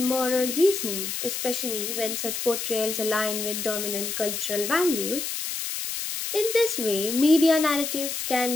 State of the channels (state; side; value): noise; left; hiss, 4 dB below the sound